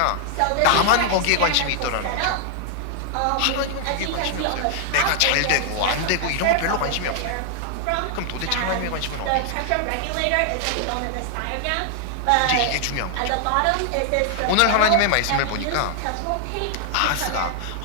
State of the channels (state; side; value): different; both; correlation 0.00